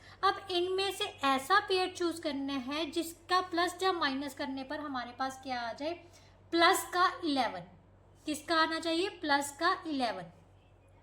अब इनमें से ऐसा पेयर चूज करना है जिसका प्लस जब माइनस करने पर हमारे पास क्या आ जाए, प्लस का 11। किसका आना चाहिए, प्लस का 11,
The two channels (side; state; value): both; identical; correlation 1.00